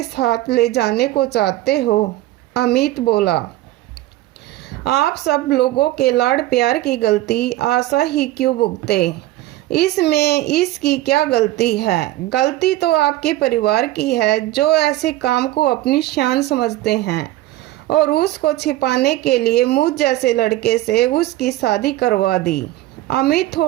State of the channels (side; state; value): left; quieter; 16.0 dB